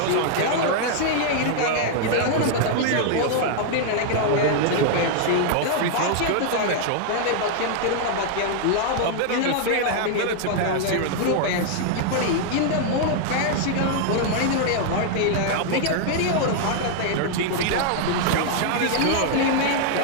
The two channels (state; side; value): different; both; correlation 0.00